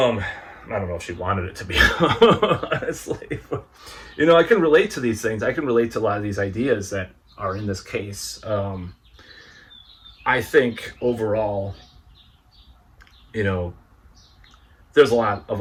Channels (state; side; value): identical; both; correlation 1.00